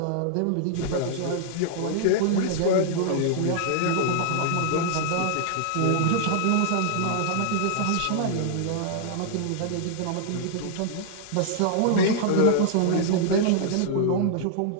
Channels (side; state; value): both; different; correlation -0.01